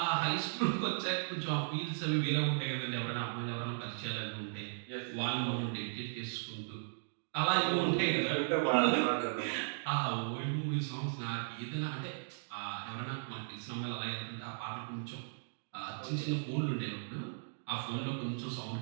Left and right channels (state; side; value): silent; left; digital silence